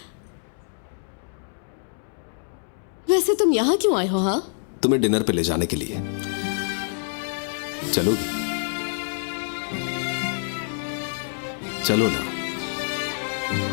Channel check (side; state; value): right; silent; 61 dB below the other